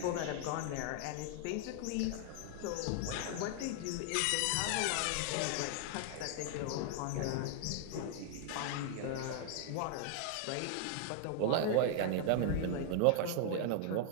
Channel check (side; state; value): both; different; correlation 0.00